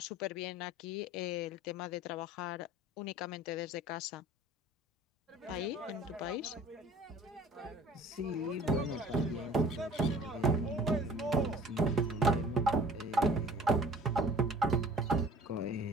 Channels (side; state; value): both; normal; correlation 0.48